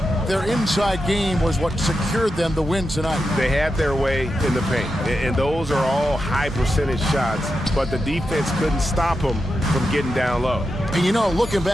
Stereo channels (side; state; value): both; normal; correlation 0.88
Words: Their inside game was what secured them the win tonight. They had their way in the paint, and those are all high percentage shots, but the defense couldn't stop them from getting down low. And you know, looking